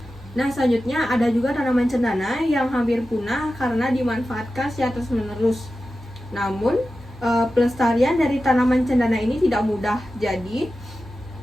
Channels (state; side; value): normal; both; correlation 0.93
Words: Nah, selanjutnya ada juga tanaman cendana yang hampir punah karena dimanfaatkan secara terus-menerus. Namun pelestarian dari tanaman cendana ini tidak mudah, jadi